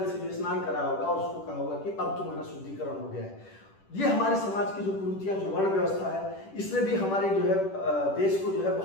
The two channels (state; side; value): late; right; 10 ms